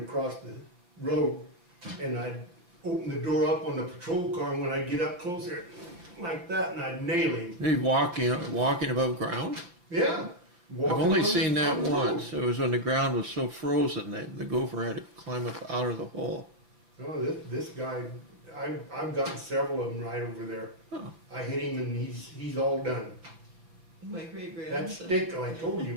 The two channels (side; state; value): left; late; 5.8 ms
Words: across the road, and I'd open the door up on the patrol car, and when I'd get up closer, like that, and I'd nail him. You walking above ground? Yeah. I've only Walking seen that on the road. once. It was when the ground was so frozen that the gopher had to climb up out of the hole. No, this guy, I've gotten several of them right over there. Oh. I hit him and he's all done. My great That grandson, stick, I told you,